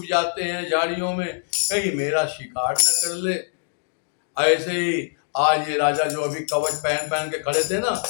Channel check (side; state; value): right; silent; digital silence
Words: जाते हैं झाड़ियों में, कहीं मेरा शिकार न कर ले। ऐसे ही आज ये राजा जो अभी कवच पहन पहन के खड़े थे ना,